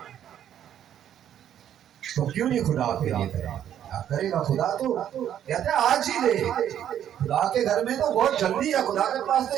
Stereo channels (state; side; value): quieter; left; 10.3 dB